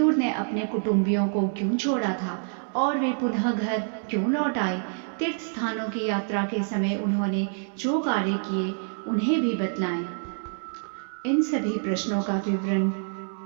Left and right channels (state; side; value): silent; left; 60 dB below the other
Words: ने अपने कुटुंबियों को क्यों छोड़ा था और वे पुनः घर क्यों लौट आए। तीर्थ स्थानों की यात्रा के समय उन्होंने जो कार्य किए उन्हें भी बतलाएं। इन सभी प्रश्नों का विवरण